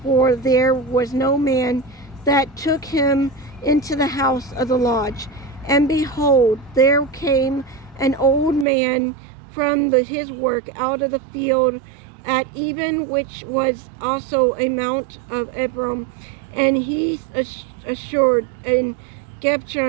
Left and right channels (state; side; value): drops out; left; at 8.7 s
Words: for there was no man that took him into the house of the lodge. And behold, there came an old man from his work out of the field at even, which was also a mount of Ephraim, and he assured in